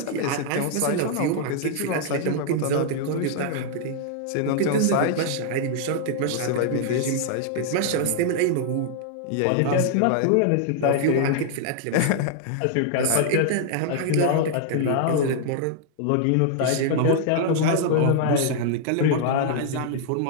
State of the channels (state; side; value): different; both; correlation -0.01